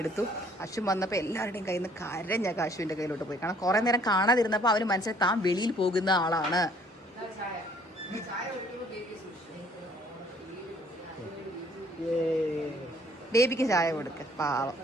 എടുത്തു. അശ്വിൻ വന്നപ്പോൾ എല്ലാവരുടെയും കയ്യിൽ നിന്ന് കരഞ്ഞൊക്കെ അശ്വിൻ്റെ കയ്യിലോട്ട് പോയി. കാരണം കുറേ നേരം കാണാതിരുന്നപ്പോൾ അവന് മനസ്സിലായി താൻ വെളിയിൽ പോകുന്ന ആളാണ്. ബേബിക്ക് ചായ കൊടുക്ക, പാവം.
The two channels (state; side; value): normal; both; correlation 0.60